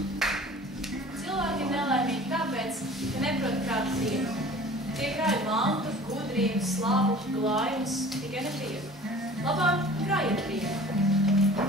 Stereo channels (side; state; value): both; normal; correlation 0.45